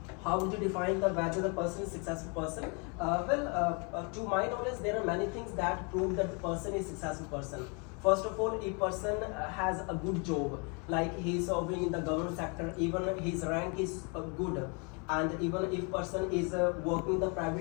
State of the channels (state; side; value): quieter; right; 34.1 dB